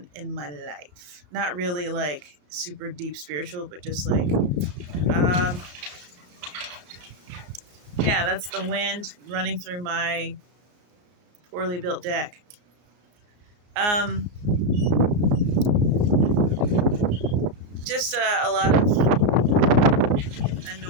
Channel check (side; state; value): left; late; 34 ms